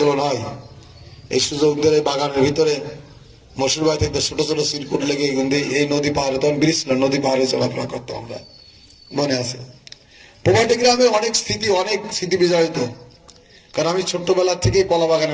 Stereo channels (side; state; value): both; identical; correlation 1.00